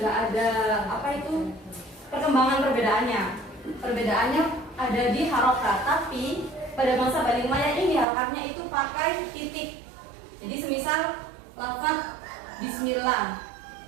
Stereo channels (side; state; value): left; drops out; at 8.1 s